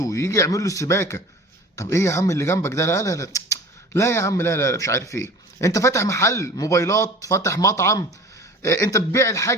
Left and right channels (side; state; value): both; normal; correlation 0.41